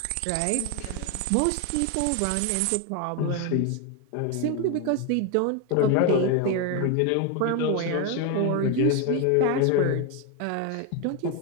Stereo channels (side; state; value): both; different; correlation 0.01